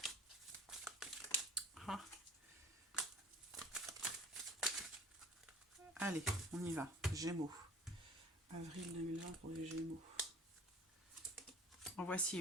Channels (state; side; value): normal; both; correlation 0.47